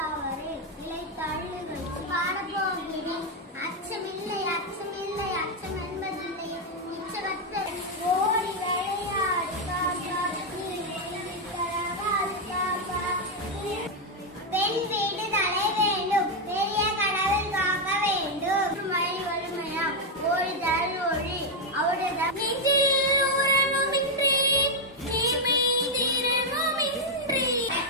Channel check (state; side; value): normal; both; correlation 0.02